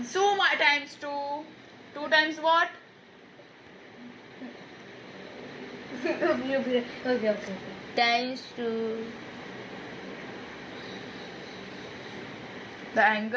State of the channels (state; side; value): identical; both; correlation 1.00